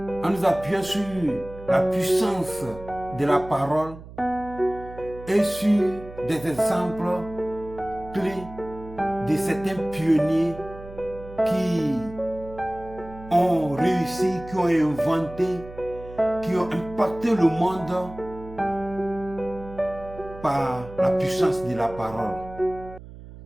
nous appuyant sur la puissance de la parole et sur des exemples clés de certains pionniers qui ont réussi, qui ont inventé, qui ont impacté le monde par la puissance de la parole.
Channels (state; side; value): noise; right; hum, 16 dB below the sound